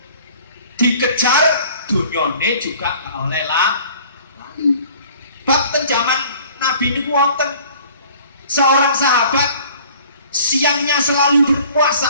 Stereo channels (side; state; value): both; inverted; correlation -0.51